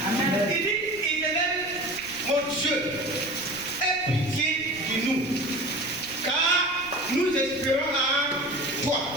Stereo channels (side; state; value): right; noise; rumble, 22 dB below the sound